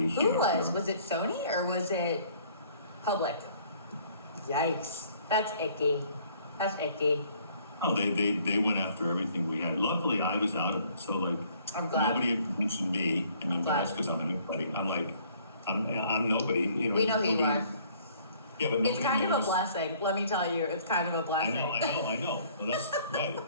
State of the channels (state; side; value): inverted; both; correlation -0.59